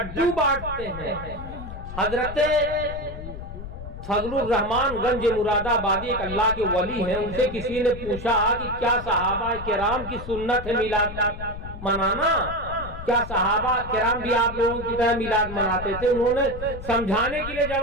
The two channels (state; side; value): noise; left; rumble, 10 dB below the sound